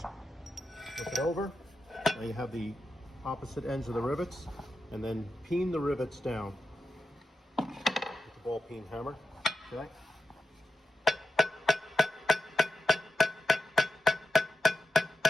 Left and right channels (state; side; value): normal; both; correlation 0.88